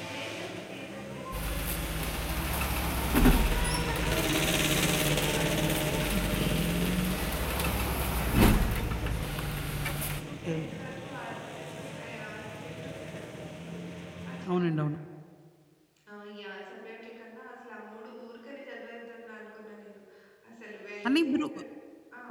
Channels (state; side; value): identical; both; correlation 1.00